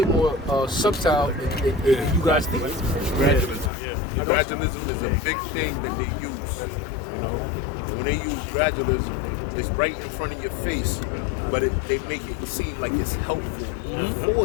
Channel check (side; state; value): right; drops out; at 3.7 s